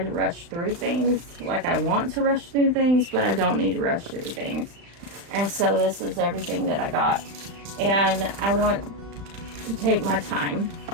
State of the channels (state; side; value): late; left; 35 ms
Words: rush through things. Like, I want to rush through things, but I don't need to rush through things. And so this is everything that I got, and I want to take my time.